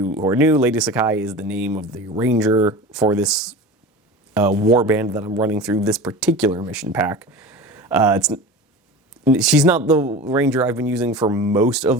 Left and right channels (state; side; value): normal; both; correlation 0.33